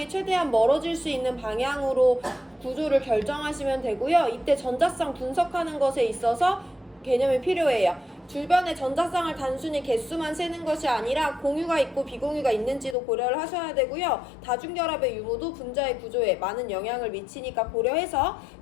최대한 멀어질 수 있는 방향으로 구조를 결정하시면 되고요. 이때 전자쌍 분석하는 것에 있어서 개념이 필요해요. 주변의 전자쌍을 단순히 개수만 세는 것이 아니라 공유가 있고 비공유가 있는지도 고려를 하셔야 되고요. 다중결합의 유무도 분자의 구조에 많은 영향을 미치니까 고려해서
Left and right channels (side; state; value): right; drops out; at 13.0 s